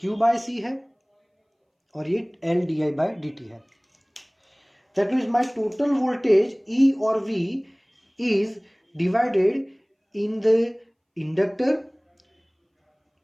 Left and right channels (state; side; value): identical; both; correlation 1.00